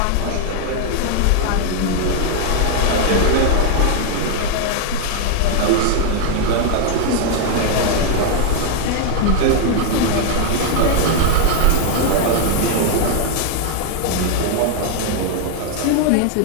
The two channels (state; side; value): different; both; correlation 0.00